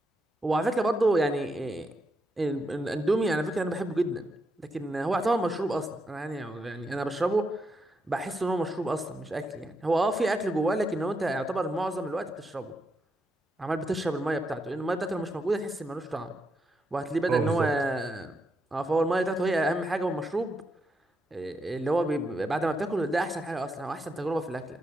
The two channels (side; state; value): both; normal; correlation 0.82